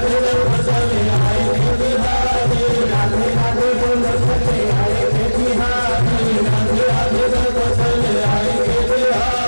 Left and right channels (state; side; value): inverted; both; correlation -1.00